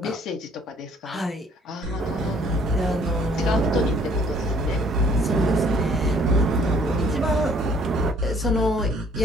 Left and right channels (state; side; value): normal; both; correlation 0.59